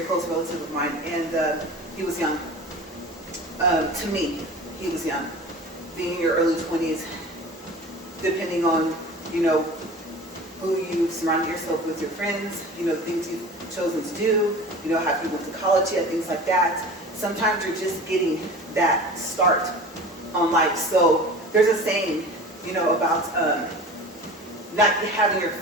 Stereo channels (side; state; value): both; normal; correlation 0.37